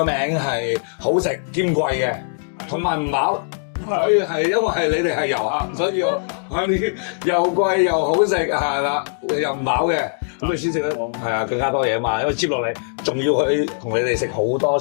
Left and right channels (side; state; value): right; silent; digital silence